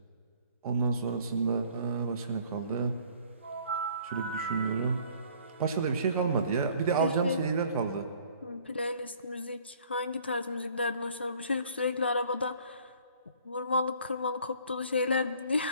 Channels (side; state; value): both; inverted; correlation -0.56